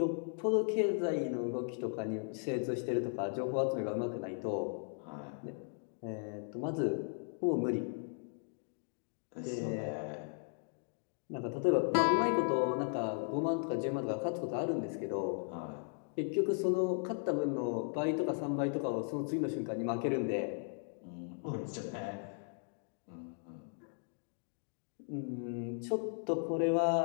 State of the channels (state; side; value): silent; right; 53 dB below the other